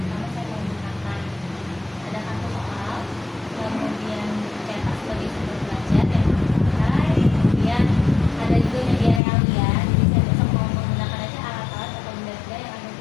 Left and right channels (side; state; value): right; drops out; at 9.2 s